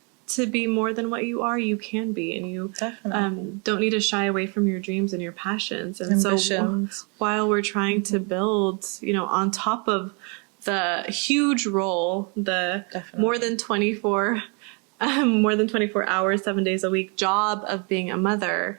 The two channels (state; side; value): quieter; left; 34.4 dB